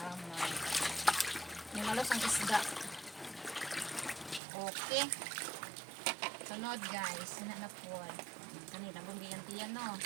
Yung malos ang isda. Okay. Sunod guys, na po. Kanila, bumbiyan-tiyan, no?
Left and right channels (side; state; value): left; drops out; at 4.4 s